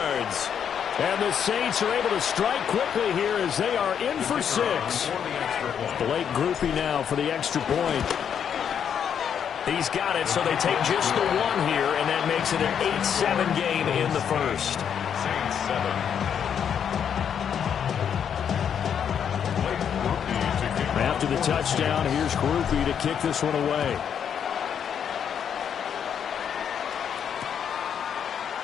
And the Saints are able to strike quickly here as they are in for 6. Blake Groupie now for the extra point. He's got it, so they take just the one here, and that makes it an 8-7 game in the first. Saints 7. After the touchdown, here's Groupie to kick this one away.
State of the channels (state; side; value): quieter; right; 8.2 dB